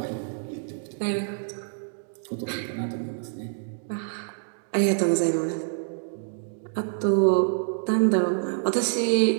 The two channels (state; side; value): silent; left; digital silence